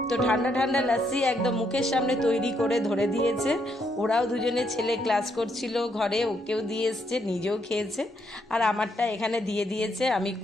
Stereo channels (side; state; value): both; normal; correlation 0.75